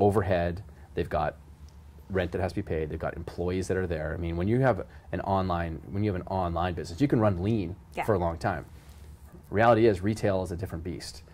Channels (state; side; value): identical; both; correlation 1.00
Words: they've got rent that has to be paid, they've got employees that are there. I mean, when you have an online business, you can run lean for a long time. Reality is, retail is a different beast.